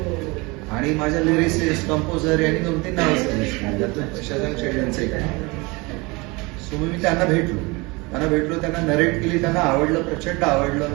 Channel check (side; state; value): left; quieter; 25.5 dB